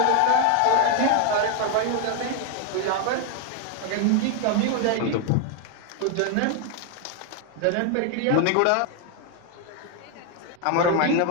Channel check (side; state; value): both; different; correlation 0.01